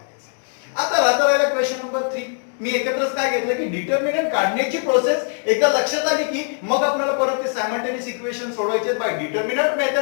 आहे. आता राहिला क्वेश्चन नंबर 3. मी एकत्रच काय घेतलं की डिटर्मिनंट काढण्याची प्रोसेस एकदा लक्षात आली की मग आपल्याला परत ते सायमल्टेनियस इक्वेशन सोडवायचे बाय डिटर्मिनंट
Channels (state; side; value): silent; right; 56 dB below the other